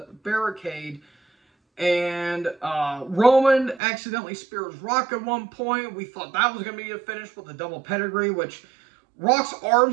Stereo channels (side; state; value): left; drops out; at 3.8 s